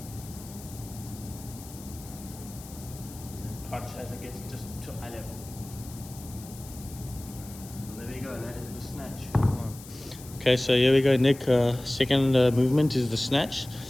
Punch as it gets just to eye level. And there we go, that is the snatch. Okay, so here we go, Nick. Second movement is the snatch.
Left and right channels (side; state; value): left; noise; hiss, 17 dB below the sound